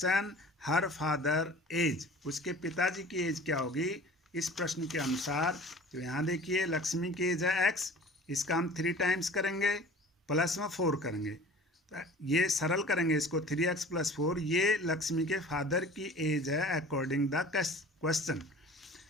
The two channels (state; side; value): normal; both; correlation 0.43